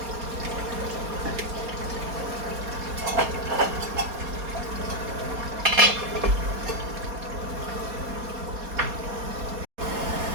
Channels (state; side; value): late; left; 4.2 ms